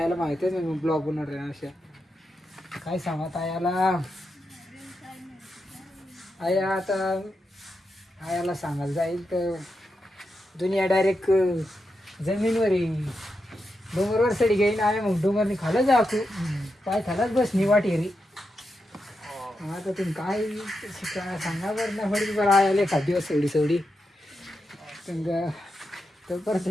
माहिती आहे मी ब्लॉग बनवणार आहे. अशा काय सांगत आयाला. आया आता आयाला सांगायला जाईल तर दुनिया डायरेक्ट जमीनवर येईल. डोंगरवर सडी घेईन आहे. मग डोंगरनी खालं जा तू पाय खालाच बस निवाटी रे. आता तुम्ही काय सांगा बरं ना. फडी बरं आयाला एखाद दिवस सवडी सवडी तर परत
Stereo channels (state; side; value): normal; both; correlation 0.87